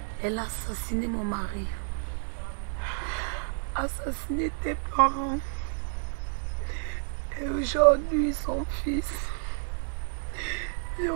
Elle a assassiné mon mari, assassiné tes parents, Et aujourd'hui, son fils est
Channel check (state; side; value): silent; left; digital silence